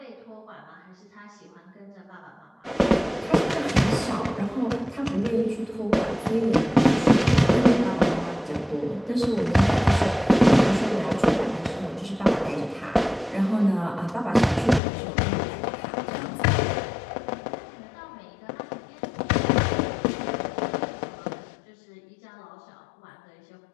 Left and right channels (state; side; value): drops out; right; at 14.8 s